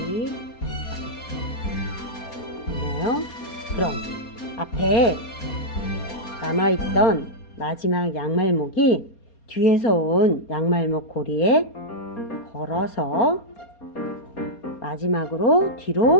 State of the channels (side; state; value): right; late; 4.3 ms